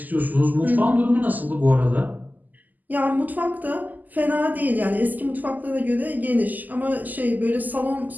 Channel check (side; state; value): left; late; 0.083 ms